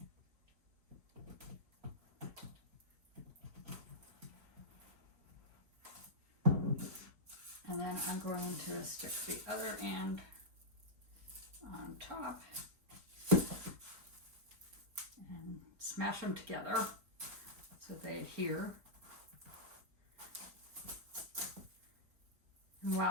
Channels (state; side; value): late; left; 4.3 ms